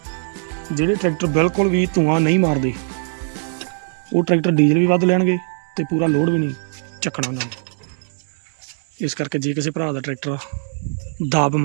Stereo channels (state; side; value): silent; left; 65 dB below the other